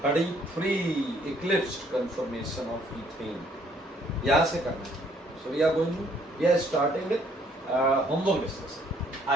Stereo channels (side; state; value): both; normal; correlation 0.63